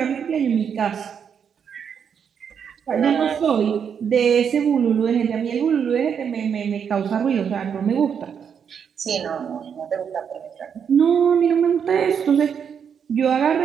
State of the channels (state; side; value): quieter; left; 7.4 dB